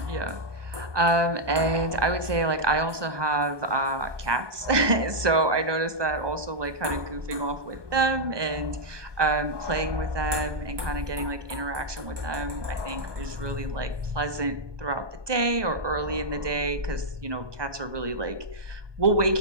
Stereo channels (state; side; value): late; left; 1.2 ms